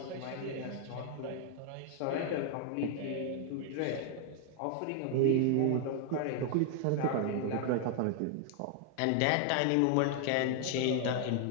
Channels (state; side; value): different; both; correlation 0.00